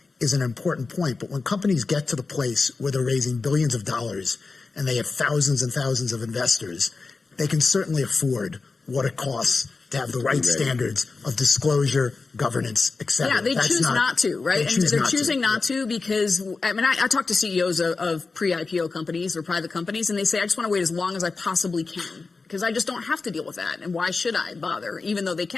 is an important point. But when companies get to the place where they're raising billions of dollars and they have thousands and thousands of investors, they can certainly afford what it costs to have the right standards of disclosure, governance, et cetera. Yeah, they choose not to, right? And they're choosing not to because, I mean, I talk to CEOs of pre-IPO companies or private companies, and they say, I just want to wait as long as I possibly can because I just don't have to deal with that. And why should I bother, even though they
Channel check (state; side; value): quieter; right; 4.1 dB